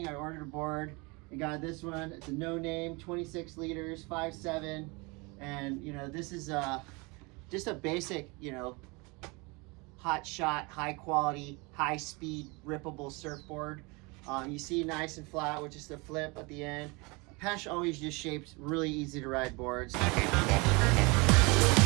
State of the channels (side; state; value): left; quieter; 27.5 dB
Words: I ordered a board and got this one. It's a no name, 26 liters, 5'7". And, you know, this is just a basic, you know, hot shot, high quality, high speed, rippable surfboard. You see nice and flat with just a flip at the end. Pesh always just shaped really easy to ride boards.